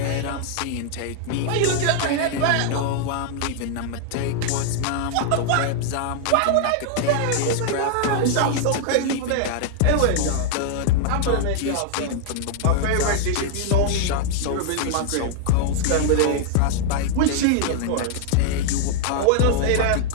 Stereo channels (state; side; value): different; both; correlation 0.00